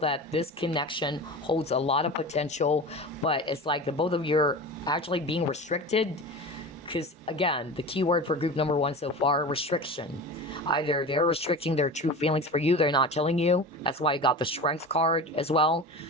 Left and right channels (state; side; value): normal; both; correlation 0.31